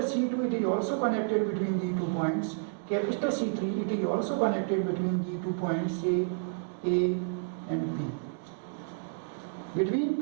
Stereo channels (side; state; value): left; silent; digital silence